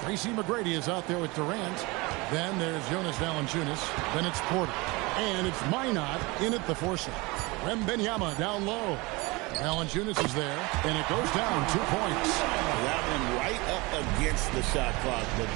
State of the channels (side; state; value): left; quieter; 24.6 dB